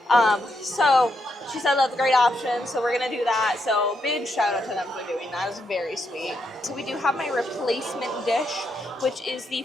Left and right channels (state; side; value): normal; both; correlation 0.80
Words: So she said that's a great option, so we're going to do that. So big shout out to them for doing that. It was very sweet. So we do have my replacement dish, which is the